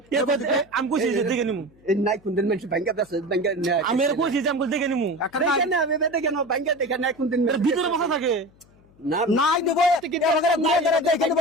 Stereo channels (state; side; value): noise; left; hum, 29 dB below the sound